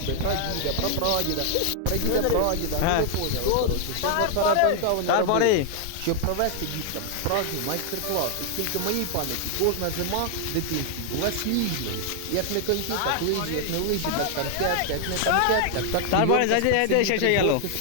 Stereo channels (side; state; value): both; different; correlation 0.00